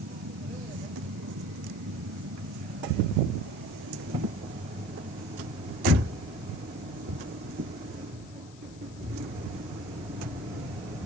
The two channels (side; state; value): left; noise; hiss, 21 dB below the sound